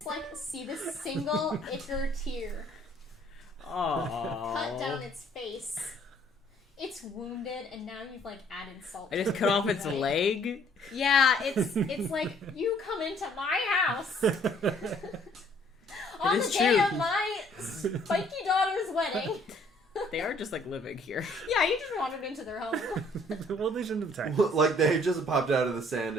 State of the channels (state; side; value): normal; both; correlation 0.61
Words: like, see this single ichor tear Aww. cut down its face. It's wounded, and now you've, like, added salt. I just cut off its leg. Yeah, it's like, you come into my house on the day of my spiky daughter's wedding. They are just like living here. Yeah, you just wandered into their home. Well, they shouldn't have attacked. Like they just popped out of the sand